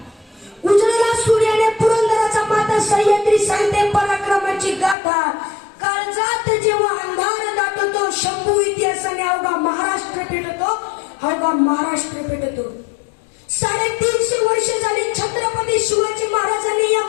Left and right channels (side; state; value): right; drops out; at 5.0 s